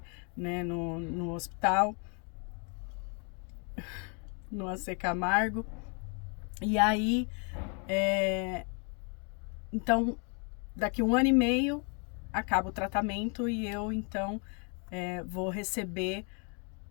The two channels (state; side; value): quieter; right; 37.2 dB